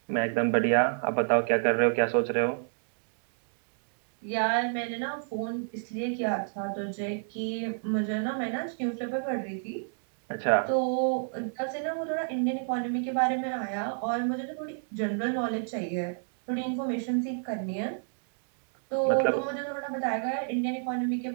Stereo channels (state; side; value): silent; left; digital silence